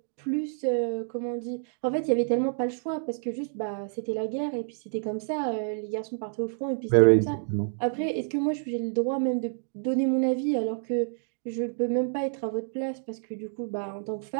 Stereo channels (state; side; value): silent; left; digital silence